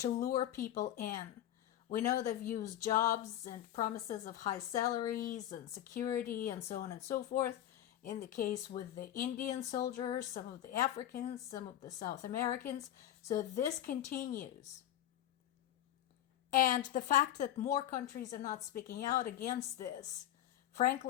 lure people in. We know they've used jobs and promises of high salaries and security and so on and so forth. In the case with the Indian soldiers, some of the Africans, some of the South Americans. So this continues. And the fact that more countries are not speaking out against this,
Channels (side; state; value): right; quieter; 12.1 dB